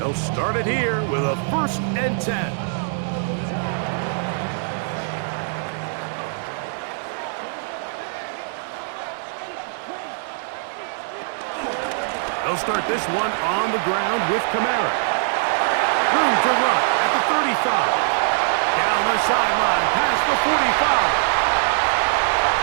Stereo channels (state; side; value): silent; left; digital silence